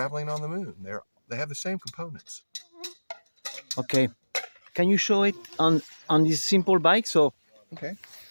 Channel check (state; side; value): inverted; both; correlation -1.00